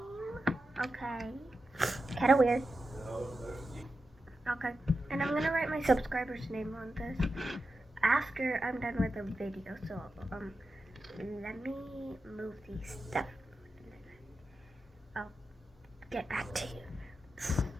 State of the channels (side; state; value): both; normal; correlation 0.90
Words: Okay. Kinda weird. Okay. And I'm gonna write my subscriber's name on this after I'm done with the video. So let me move these stuff. I'll get back to you.